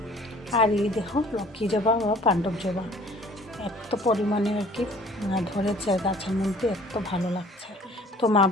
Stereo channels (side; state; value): both; normal; correlation 0.52